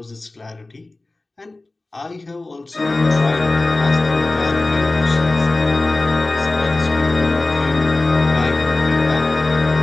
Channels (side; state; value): right; quieter; 3.0 dB